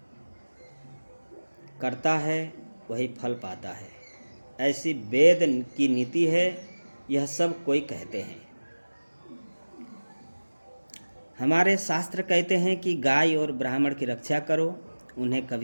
करता है वही फल पाता है, ऐसी वेद की नीति है। यह सब कोई कहते हैं। हमारे शास्त्र कहते हैं कि गाय और ब्राह्मण की रक्षा करो, उन्हें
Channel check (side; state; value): both; inverted; correlation -1.00